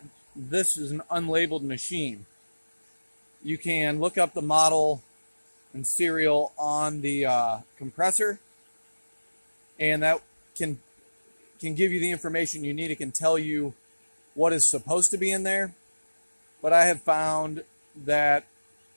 this is an unlabeled machine. You can look up the model and serial on the compressor, and that can give you the information you need. It can tell you what is supposed to be in there. But I have found that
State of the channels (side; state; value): both; inverted; correlation -1.00